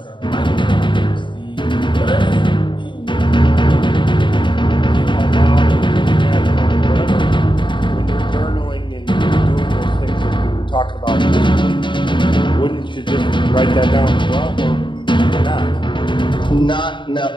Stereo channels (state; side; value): late; right; 0.23 ms